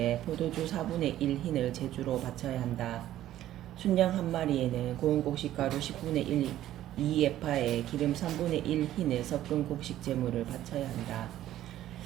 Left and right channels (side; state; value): left; quieter; 13.1 dB